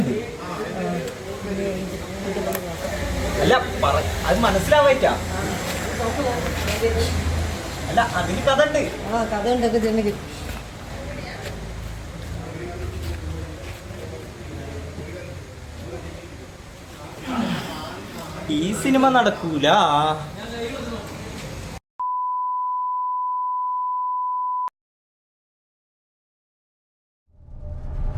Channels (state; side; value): identical; both; correlation 1.00